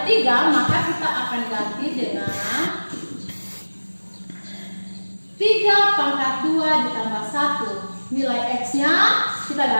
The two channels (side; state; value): both; inverted; correlation -1.00